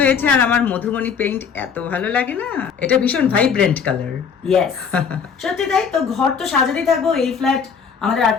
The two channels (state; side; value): quieter; right; 6.5 dB